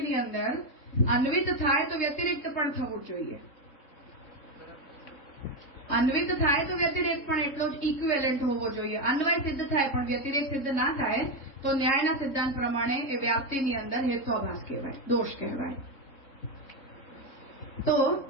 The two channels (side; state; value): right; late; 3.7 ms